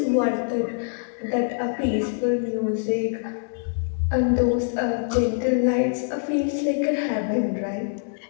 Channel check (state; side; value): silent; right; 62 dB below the other